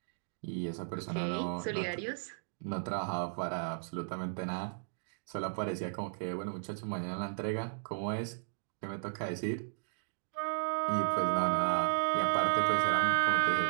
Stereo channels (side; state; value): left; silent; digital silence